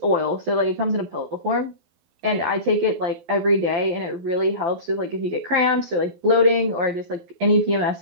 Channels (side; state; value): left; late; 12 ms